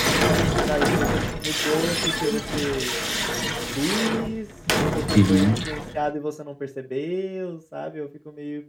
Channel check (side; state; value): both; identical; correlation 1.00